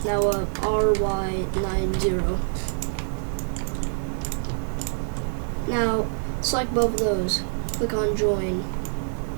Now RY90. Now select both of those. Click on join.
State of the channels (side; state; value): left; silent; digital silence